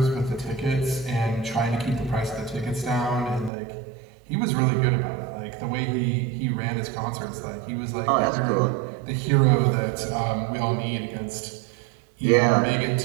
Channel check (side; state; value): left; drops out; at 3.5 s